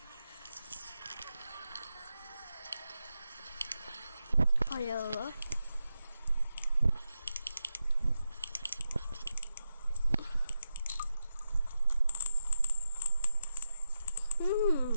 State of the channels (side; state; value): both; inverted; correlation -0.88